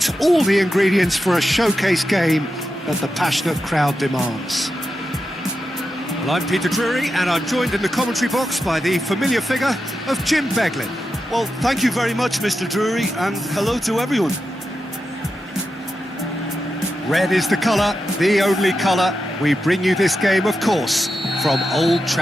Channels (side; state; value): both; normal; correlation 0.89